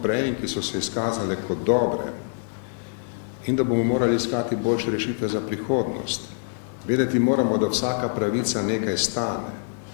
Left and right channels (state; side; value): silent; right; digital silence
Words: ki so se izkazale kot dobre, in da bomo morali iskati boljše rešitve za prihodnost. Vedeti moramo, da vsaka pravica nekaj stane